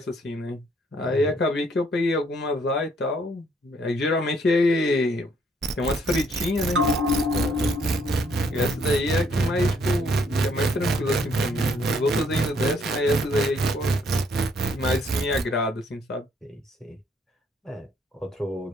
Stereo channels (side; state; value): both; normal; correlation 0.67